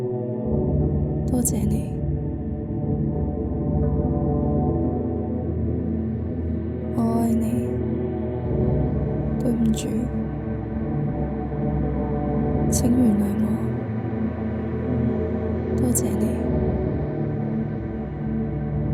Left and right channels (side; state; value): both; identical; correlation 1.00